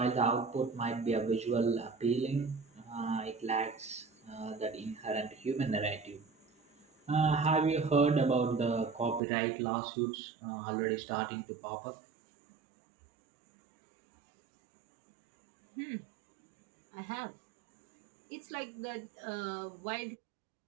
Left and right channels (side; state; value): left; drops out; at 9.2 s